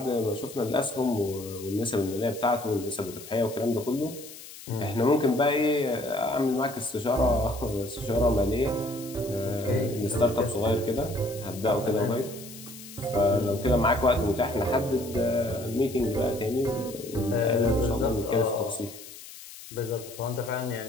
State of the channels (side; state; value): left; noise; hiss, 15 dB below the sound